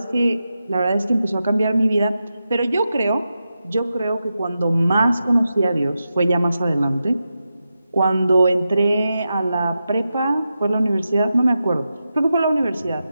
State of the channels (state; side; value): inverted; both; correlation -0.90